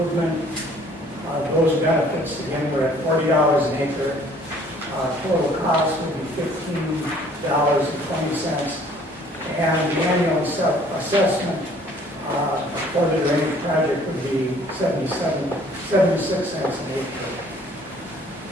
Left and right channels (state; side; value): normal; both; correlation 0.57